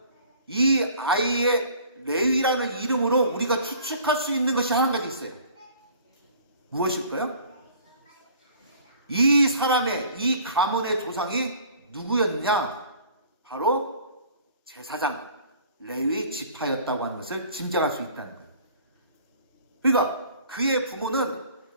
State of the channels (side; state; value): both; inverted; correlation -0.50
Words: 이 아이의 레위라는 이름으로 우리가 추측할 수 있는 것이 한 가지 있어요. 무엇일까요? 이 사람의, 이 가문의 조상이 누구였느냐? 바로 제사장, 레위 지파였다고 하는 것을 짐작할 수 있다는 거예요. 그러니까 그의 부모는